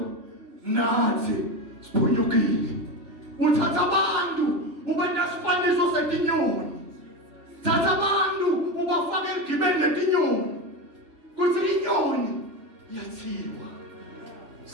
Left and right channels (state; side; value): late; left; 3.3 ms